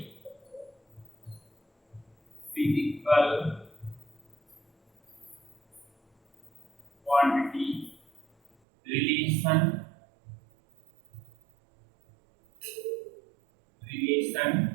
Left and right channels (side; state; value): left; drops out; at 8.5 s